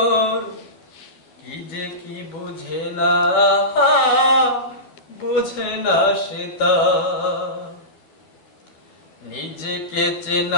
কি যে কি বুঝে না সে তা। নিজেকে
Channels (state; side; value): late; right; 12 ms